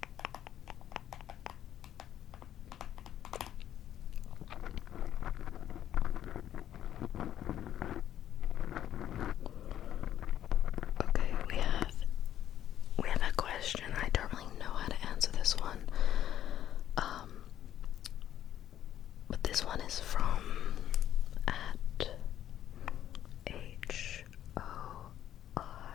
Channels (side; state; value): right; quieter; 11.2 dB